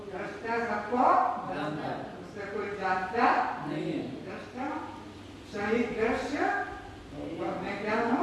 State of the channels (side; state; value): both; identical; correlation 1.00